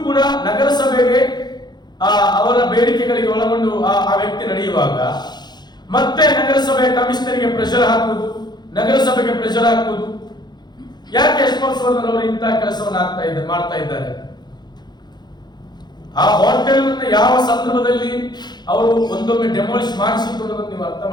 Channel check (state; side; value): late; right; 0.21 ms